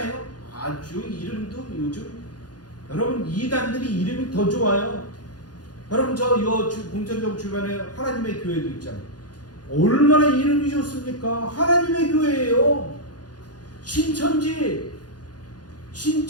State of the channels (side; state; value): right; late; 0.69 ms